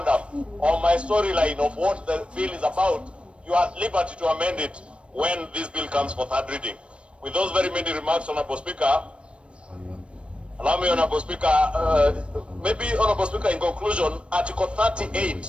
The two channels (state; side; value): late; left; 0.059 ms